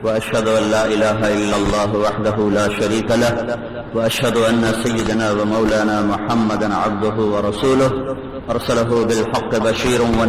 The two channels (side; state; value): both; identical; correlation 1.00